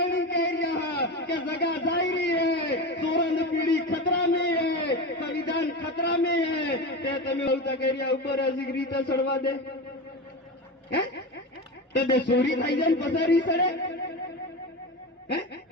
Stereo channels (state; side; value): normal; both; correlation 0.23